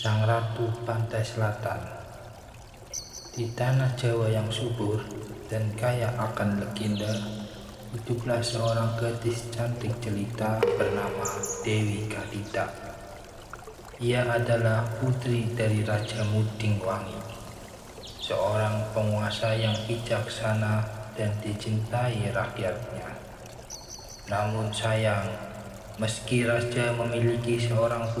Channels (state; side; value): identical; both; correlation 1.00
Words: ratu pantai selatan. Di tanah Jawa yang subur dan kaya akan legenda, hiduplah seorang gadis cantik jelita bernama Dewi Kadita. Ia adalah putri dari Raja Muding Wangi, seorang penguasa yang bijaksana dan dicintai rakyatnya. Namun sayang, meski raja memiliki seorang